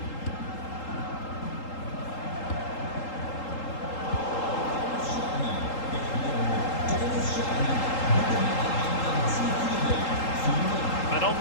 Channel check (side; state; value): right; late; 3.8 ms